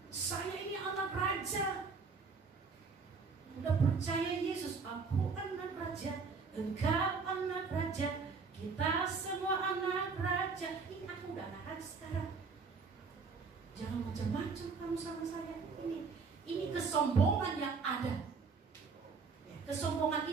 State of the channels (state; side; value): quieter; left; 4.9 dB